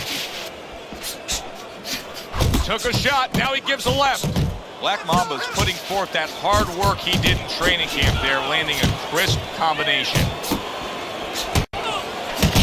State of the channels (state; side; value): identical; both; correlation 1.00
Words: Took a shot, now he gives a left. Black Mamba's putting forth that hard work he did in training camp there, landing a crisp combination.